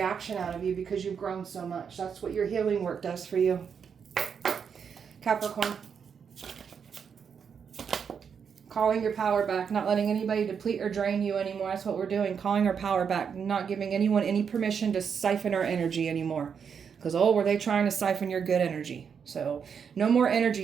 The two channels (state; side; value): quieter; left; 6.9 dB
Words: out of you because you've grown so much. That's what your healing work does for you. Capricorn. Calling your power back. Not letting anybody deplete or drain you anymore. That's what we're doing. Calling our power back. Not giving anyone any permission to siphon our energy anymore. Because, were they trying to siphon your good energy? So, no more